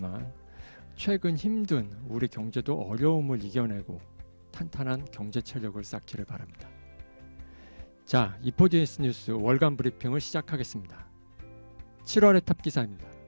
최근 힘든 우리 경제도 어려움을 이겨내고 탄탄한 경제 체력을 쌓기를 바랍니다. 자, 이포디에스 뉴스 월간 브리핑을 시작하겠습니다. 7월의 탑 기사입니다.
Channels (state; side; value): inverted; both; correlation -1.00